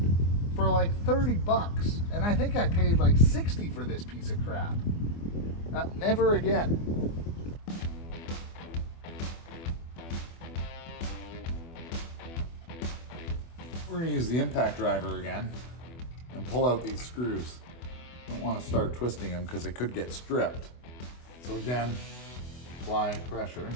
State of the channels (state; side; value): late; right; 24 ms